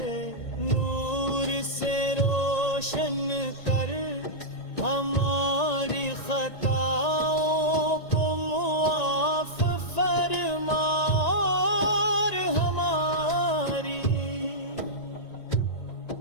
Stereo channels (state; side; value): late; right; 1.9 ms